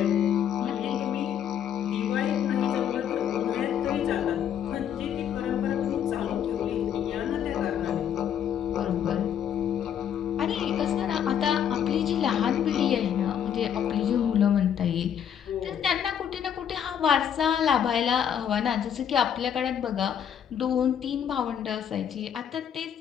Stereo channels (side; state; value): right; quieter; 9.0 dB